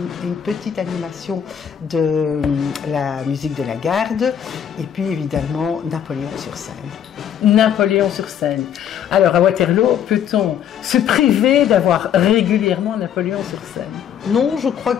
animation de la musique de la garde. Et puis, évidemment, Napoléon sur scène. Napoléon sur scène. Alors, à Waterloo, peut-on se priver d'avoir régulièrement Napoléon sur scène? Non, je crois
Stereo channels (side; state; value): right; quieter; 9.0 dB